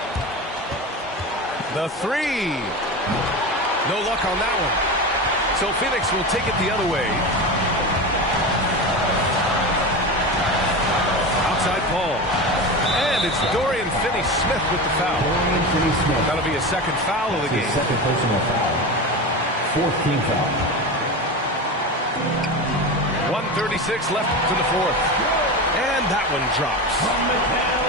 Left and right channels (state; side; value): normal; both; correlation 0.24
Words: The three. No luck on that one. So Phoenix will take it the other way. Outside Paul. And it's Dorian Finney-Smith with the foul. Dorian Finney-Smith. That'll be a second foul of the game. Second personal foul. Fourth team foul. 1:36 left to the fourth. And that one drops.